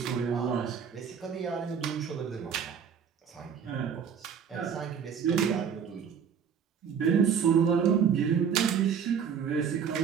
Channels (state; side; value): quieter; left; 7.3 dB